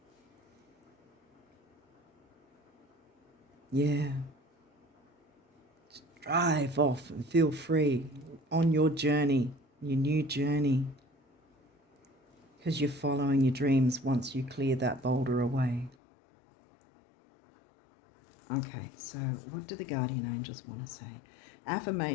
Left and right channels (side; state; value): right; drops out; at 16.0 s